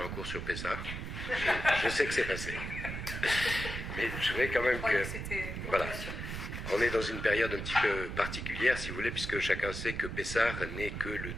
un cours sur Pessah. Je sais que c'est passé. Mais je voudrais quand même que... Voilà. On est dans une période un petit peu particulière, si vous voulez, puisque chacun sait que Pessah n'est que le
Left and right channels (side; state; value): right; noise; rumble, 6 dB below the sound